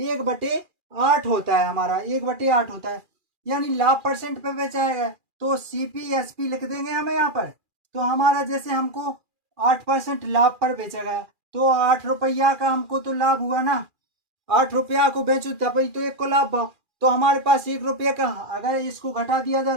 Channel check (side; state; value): left; late; 2.4 ms